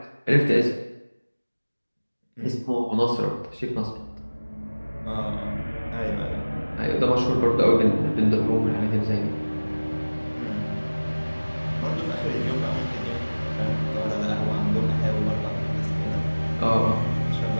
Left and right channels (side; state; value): both; inverted; correlation -1.00